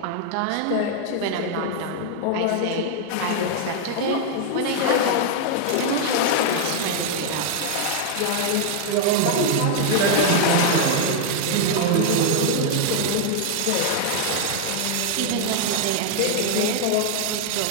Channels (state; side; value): different; both; correlation 0.00